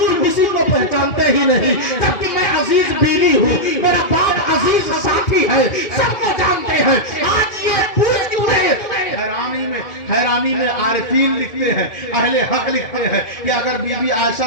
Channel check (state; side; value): late; right; 2.1 ms